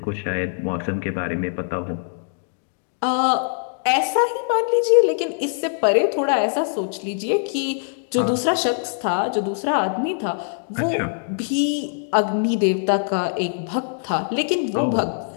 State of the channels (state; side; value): silent; right; digital silence